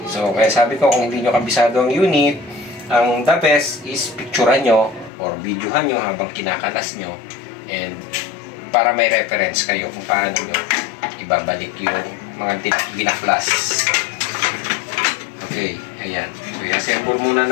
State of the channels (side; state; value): right; drops out; at 5.1 s